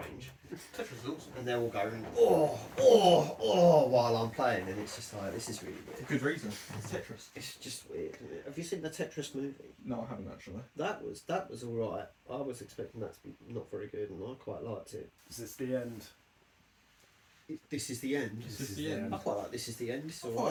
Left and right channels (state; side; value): identical; both; correlation 1.00